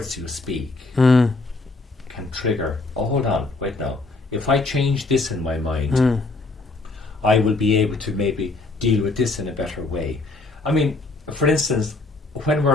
you speak can trigger, oh, hold on, wait now. If I change this in my mind, I will be able to maybe deal with this in a better way. I mean, for instance, when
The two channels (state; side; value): quieter; right; 3.3 dB